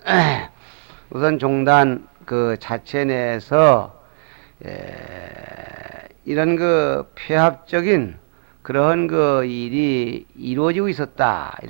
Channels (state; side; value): silent; left; 67 dB below the other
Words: 우선 종단 그 자체 내에서 이런 그 폐합적인 그런 그 일이 이루어지고 있었다